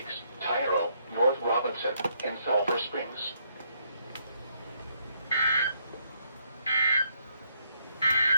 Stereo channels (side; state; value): both; inverted; correlation -0.72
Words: Tyro, North Robinson, and Sulphur Springs.